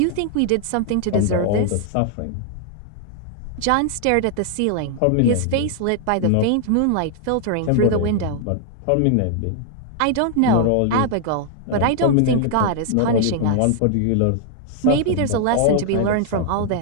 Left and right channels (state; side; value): different; both; correlation 0.00